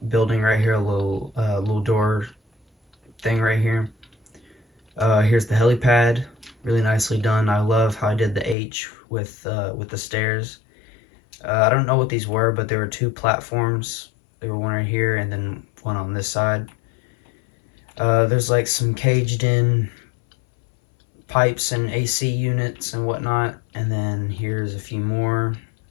building right here, a little door thing right here. Here's the helipad, really nicely done. I love how I did the H with the stairs. I don't know what these were, but there were two platforms. There were one right here and then one on this side. There's like some caged in pipes and AC units and whatnot. And then here's a few more.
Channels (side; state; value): right; drops out; at 8.6 s